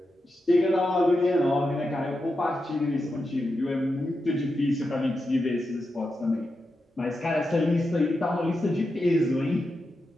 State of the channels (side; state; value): both; normal; correlation 0.88